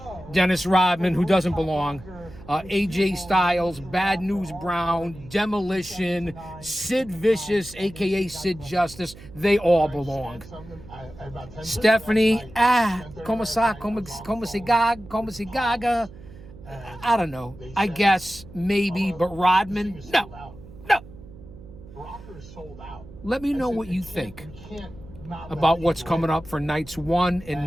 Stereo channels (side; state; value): right; noise; hum, 18 dB below the sound